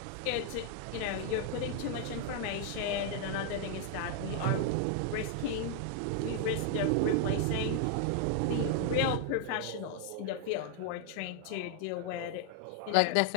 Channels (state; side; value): different; both; correlation 0.00